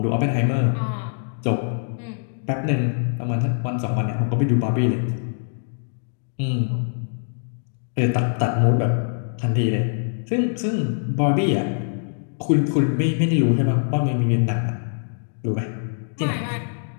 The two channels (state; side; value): silent; right; digital silence